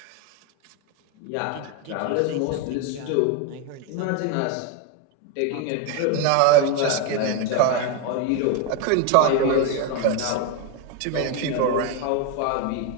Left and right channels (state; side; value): different; both; correlation 0.01